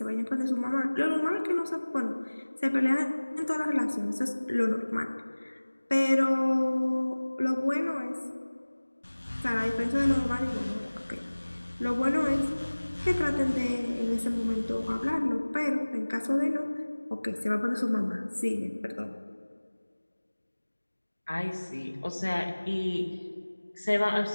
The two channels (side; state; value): both; inverted; correlation -1.00